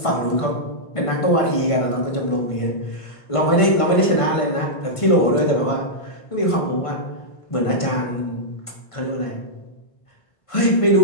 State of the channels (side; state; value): right; late; 1.5 ms